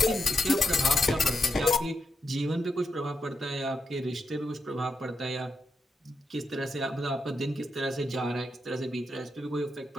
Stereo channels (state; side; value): normal; both; correlation 0.84